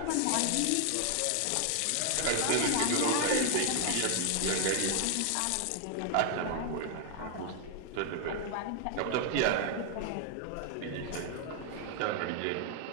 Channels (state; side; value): different; both; correlation 0.00